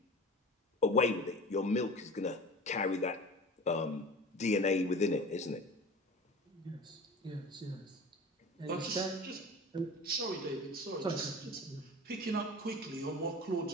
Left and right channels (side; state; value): both; normal; correlation 0.37